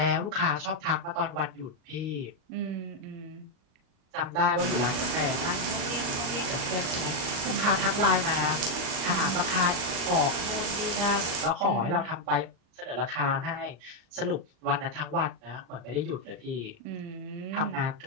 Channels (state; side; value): late; left; 38 ms